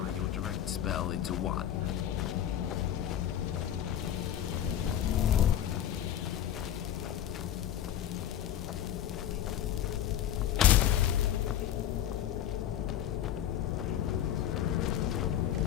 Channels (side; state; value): right; quieter; 10.8 dB